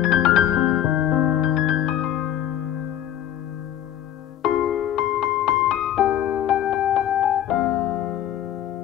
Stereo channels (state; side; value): quieter; right; 11.1 dB